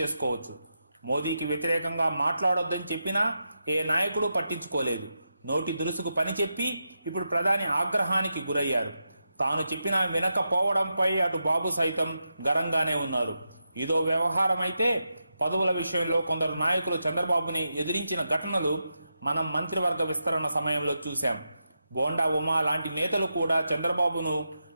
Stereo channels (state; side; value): inverted; both; correlation -0.87